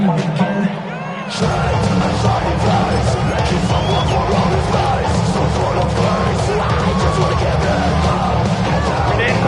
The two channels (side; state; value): both; identical; correlation 1.00